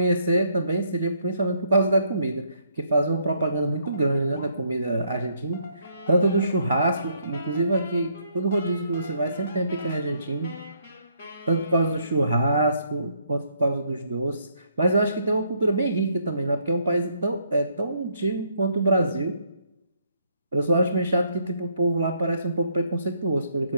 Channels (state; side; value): inverted; both; correlation -0.70